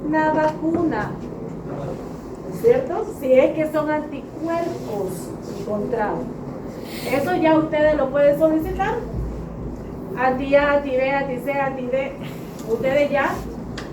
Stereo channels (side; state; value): both; identical; correlation 1.00